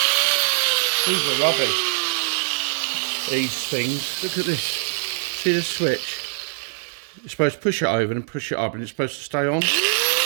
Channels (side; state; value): left; silent; digital silence